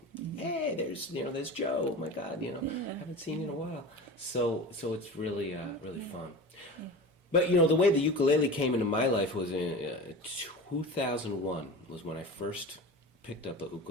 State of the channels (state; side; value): normal; both; correlation 0.32